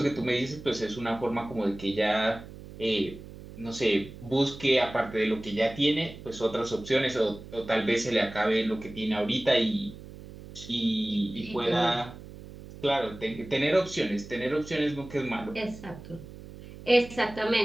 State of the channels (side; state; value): right; noise; hum, 15 dB below the sound